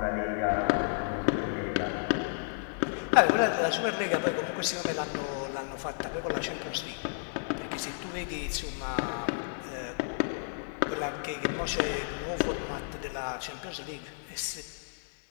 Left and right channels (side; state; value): right; silent; 57 dB below the other